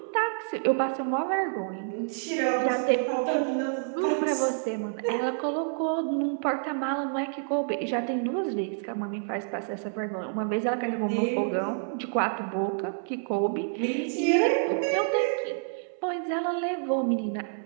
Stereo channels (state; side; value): silent; left; 59 dB below the other